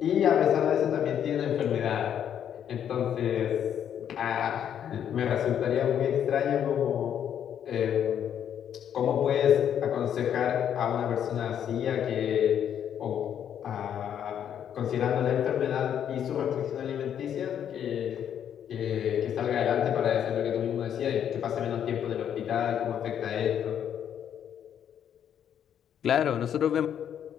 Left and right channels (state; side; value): quieter; right; 9.3 dB